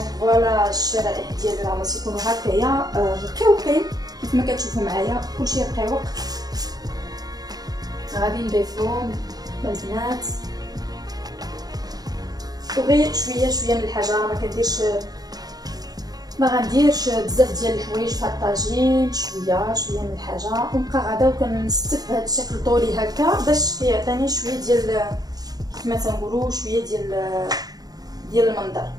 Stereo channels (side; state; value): left; late; 0.19 ms